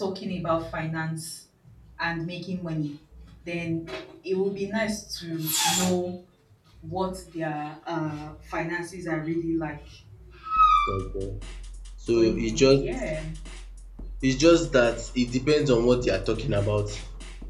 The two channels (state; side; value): identical; both; correlation 1.00